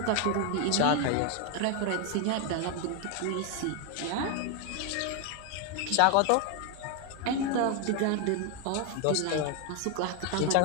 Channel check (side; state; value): both; different; correlation 0.01